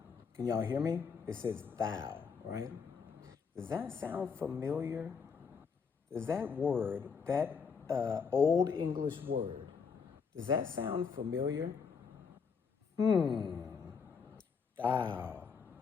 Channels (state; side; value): quieter; right; 5.8 dB